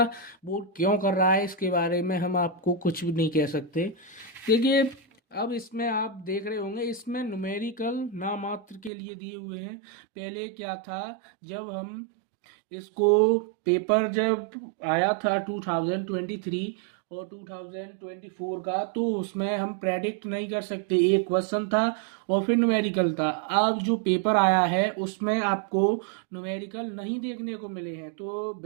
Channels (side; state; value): left; drops out; at 8.9 s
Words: बोर्ड क्यों कर रहा है इसके बारे में हम आपको कुछ भी नहीं कह सकते। देखिए, अब इसमें आप देख रहे होंगे, इसमें न्यूमेरिकल नामात्र के लिए दिए हुए हैं। पहले क्या था, जब हम इसको पेपर जब आया था 2023 और 2024 का, तो उसमें हम प्रेडिक्ट नहीं कर सकते। एक क्वेश्चन था और फिर न्यूमेरिकल था। अब जो पेपर आया है उसमें आपको न्यूमेरिकल नहीं देखने को मिले हैं। तो